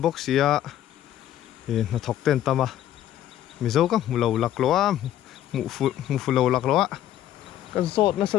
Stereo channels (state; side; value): quieter; right; 12.0 dB